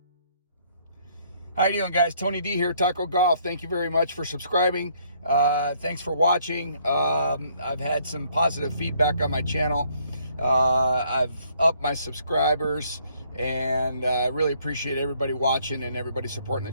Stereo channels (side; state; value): both; inverted; correlation -0.66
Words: How you doing, guys? Tony D here, Taco Golf. Thank you very much for subscribing. Thanks for watching. I've had some positive feedback on my channel. I've upped my subscribers, and I really appreciate everybody watching and everybody supporting the